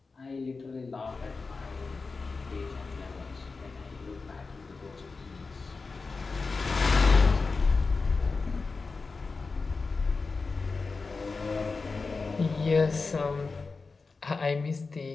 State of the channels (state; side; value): quieter; right; 4.2 dB